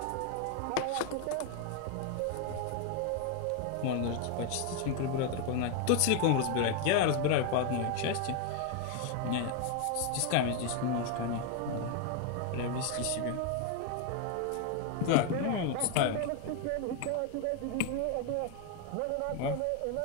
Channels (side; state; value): both; different; correlation 0.01